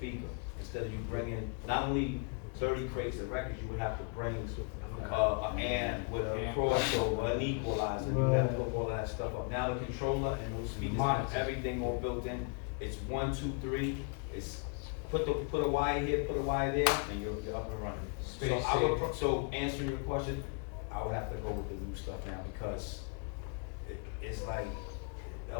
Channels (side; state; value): right; quieter; 36.8 dB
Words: Instead of you bringing not only 30 crates of records, you would have to bring an amp with a crossover, an equalizer. You have to hook all of that stuff up. Now the controller and those speakers have everything all built in. It's 1, 2, 3. It's put a wire here, put a wire there, and you're up and running. So answering your question, I would have to go with the new stuff now because it's like the